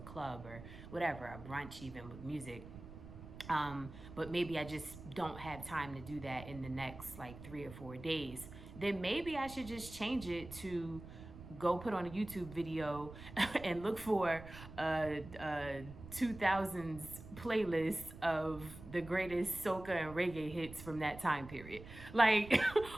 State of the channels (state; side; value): noise; right; rumble, 14 dB below the sound